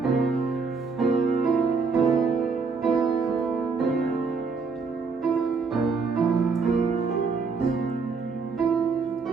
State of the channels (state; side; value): quieter; left; 4.8 dB